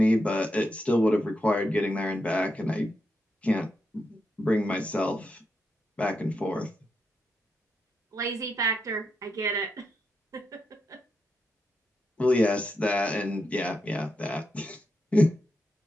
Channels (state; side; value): normal; both; correlation 0.84